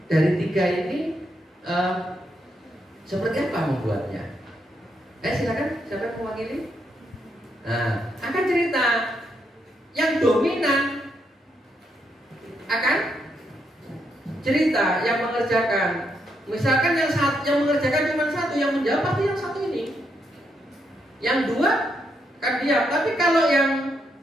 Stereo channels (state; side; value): normal; both; correlation 0.79